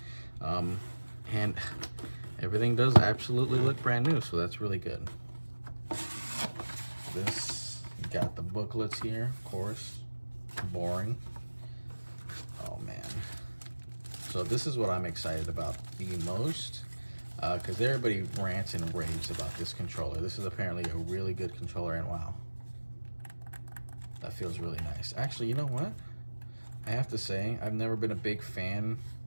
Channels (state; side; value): inverted; both; correlation -1.00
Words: And everything does absolutely look brand new, so that's really good. This, you got the booklets here, of course. Boring. Oh man. So this is what I'm excited about the most, because everybody rants and raves about this controller. This is apparently a really good controller, and wow. That feels really nice. Actually, you know what? I have to say, I've never been a big fan